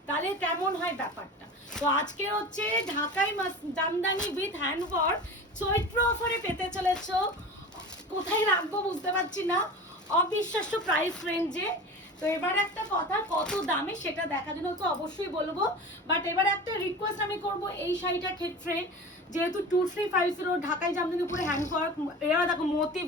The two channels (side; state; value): both; normal; correlation 0.34